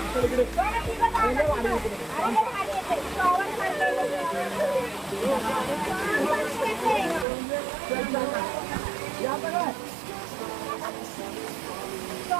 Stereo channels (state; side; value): drops out; left; at 7.2 s